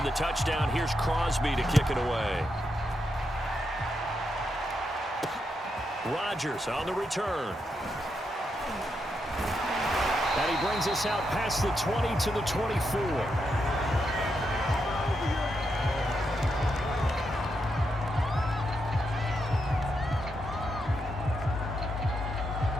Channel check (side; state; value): both; normal; correlation 0.83